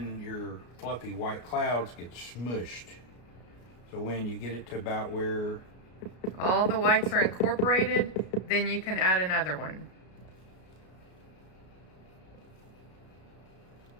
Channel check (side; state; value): right; late; 33 ms